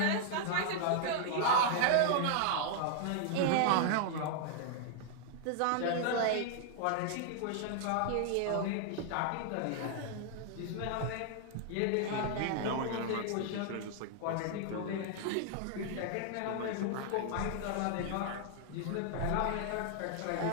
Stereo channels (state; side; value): different; both; correlation 0.00